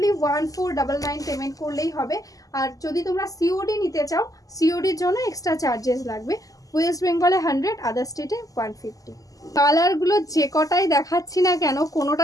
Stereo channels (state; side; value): late; right; 0.17 ms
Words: 1499 পেমেন্ট করলেই হবে। আর যদি তোমরা সিওডি নিতে চাও, সিওডির জন্য এক্সট্রা চার্জেস লাগবে। ওয়েস্ট বেঙ্গলে 100, আদার স্টেটে 150। কালারগুলো যে কটাই দেখাচ্ছি না কেন